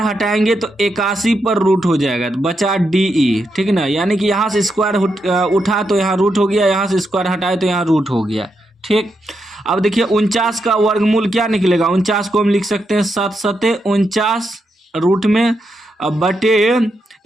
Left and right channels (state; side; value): normal; both; correlation 0.83